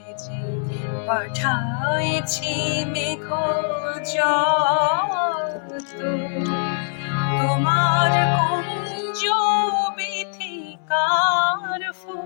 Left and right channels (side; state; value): right; silent; digital silence